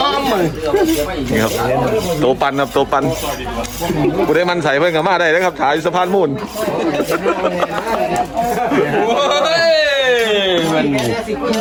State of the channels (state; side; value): identical; both; correlation 1.00